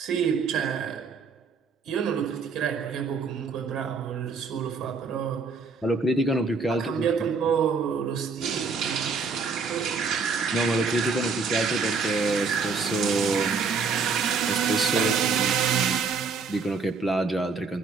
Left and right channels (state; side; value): quieter; left; 4.8 dB